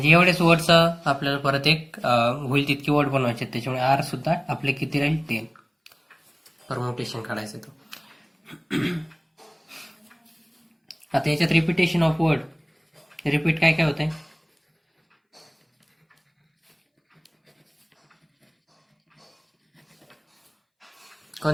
एवढेच वर्डचं आपल्याला परत एक होईल तितके वर्ड बनवायचे. त्याच्यामुळे आर सुद्धा आपले किती राहील? 10. परमुटेशन काढायचं तो. आता याच्यात रिपिटेशन ऑफ वर्ड. रिपीट काय काय होत आहे?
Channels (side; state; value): both; identical; correlation 1.00